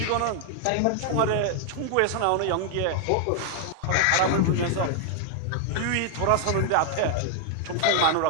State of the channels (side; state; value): both; different; correlation 0.00